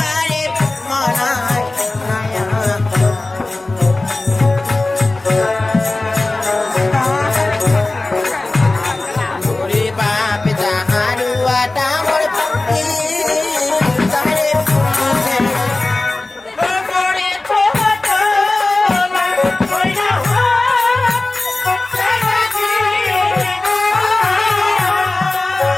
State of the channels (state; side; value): quieter; right; 3.0 dB